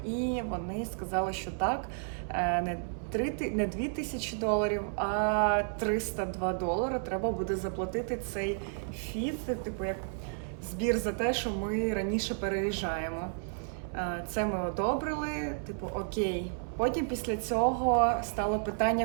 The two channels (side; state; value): left; silent; 56 dB below the other